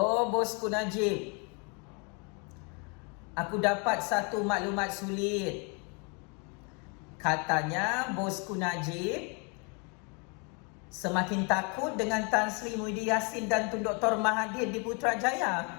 Bosku Najib. Aku dapat satu maklumat sulit. Katanya Bosku Najib semakin takut dengan Tan Sri Muhyiddin Yassin dan Tun Dr. Mahathir di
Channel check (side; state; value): right; quieter; 33.8 dB